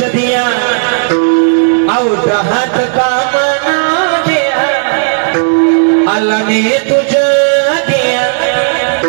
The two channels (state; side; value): silent; left; digital silence